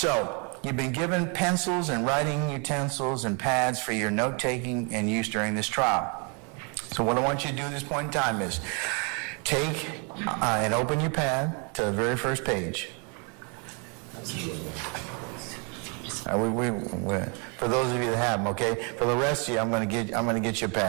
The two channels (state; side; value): quieter; left; 35.5 dB